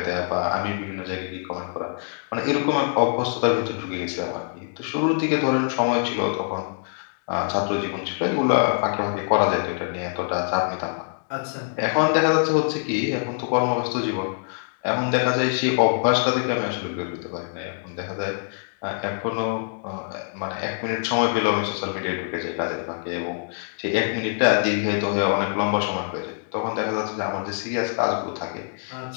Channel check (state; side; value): silent; right; digital silence